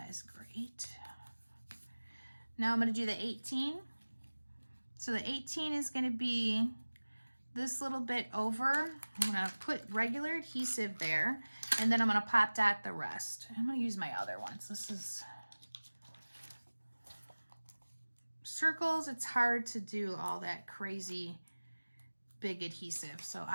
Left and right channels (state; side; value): inverted; both; correlation -1.00